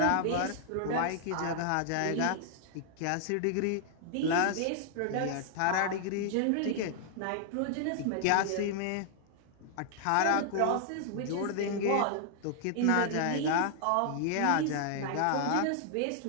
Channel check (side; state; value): both; different; correlation 0.00